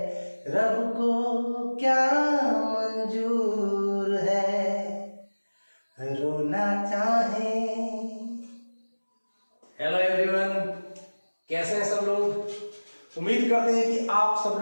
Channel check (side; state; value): both; inverted; correlation -1.00